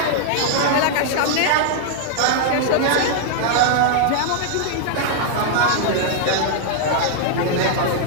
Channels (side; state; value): both; different; correlation 0.00